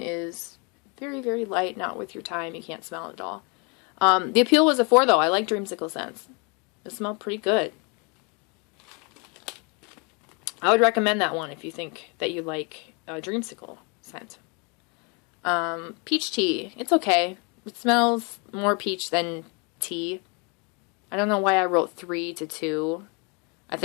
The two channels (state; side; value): quieter; right; 32.6 dB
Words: very, very light, not with your time. You can't smell it at all. The appeal was a 4, though. I like Dreamsicle scents. It smelled pretty good. I would recommend that one if you think that you like Dreamsicle scent. Peach tea. It's okay. It smells more peach than tea. I don't know why I wrote 3 to 2. I